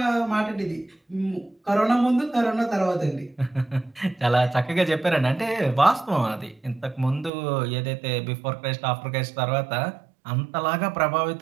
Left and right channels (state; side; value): drops out; left; at 7.3 s